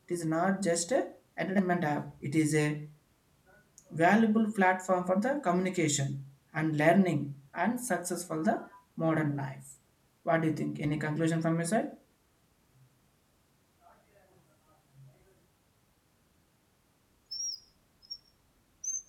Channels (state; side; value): identical; both; correlation 1.00